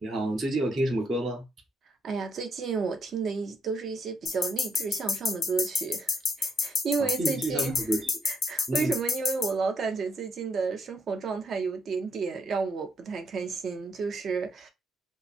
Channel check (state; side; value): normal; both; correlation 0.73